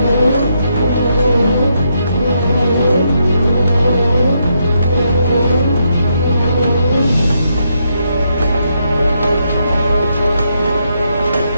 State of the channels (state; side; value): inverted; both; correlation -0.79